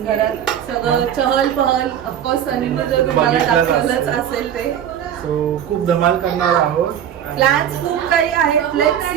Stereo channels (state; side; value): quieter; left; 9.6 dB